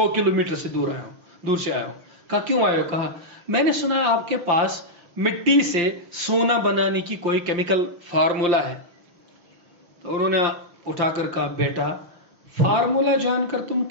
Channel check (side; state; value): left; late; 5.8 ms